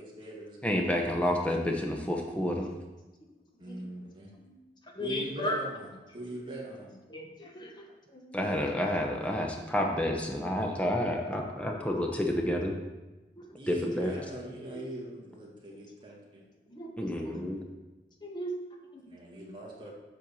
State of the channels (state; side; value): normal; both; correlation 0.68